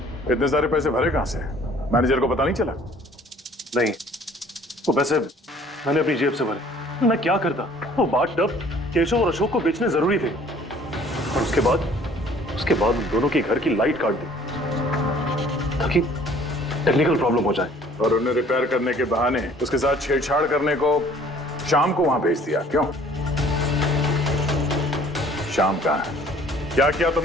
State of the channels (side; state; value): both; normal; correlation 0.54